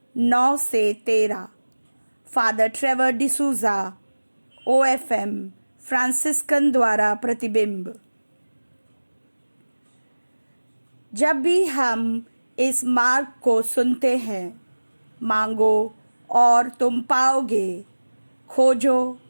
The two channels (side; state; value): both; inverted; correlation -1.00